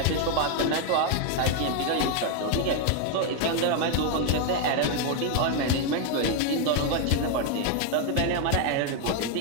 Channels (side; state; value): both; different; correlation 0.01